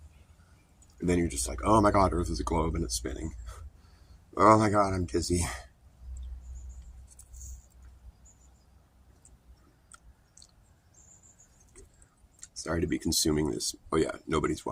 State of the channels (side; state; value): both; identical; correlation 1.00